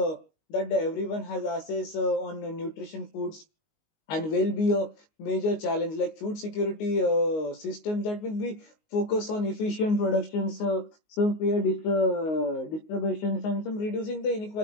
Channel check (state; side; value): late; right; 19 ms